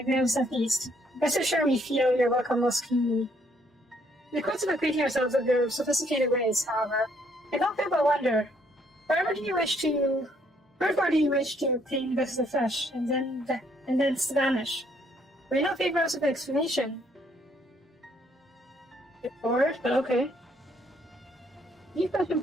feast, rest assured we feel your welcome most keenly. In the course of acquainting ourselves with your sophisticated ways, however, I don't feel but wonder, wherefore do you wish to obtain vessels of flesh, and then vanish? Will you not favor us with an explanation? Bored, but okay. You question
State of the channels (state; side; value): normal; both; correlation 0.68